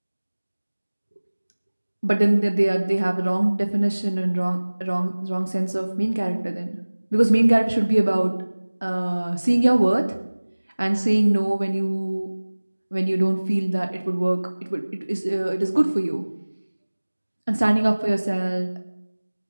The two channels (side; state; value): both; inverted; correlation -1.00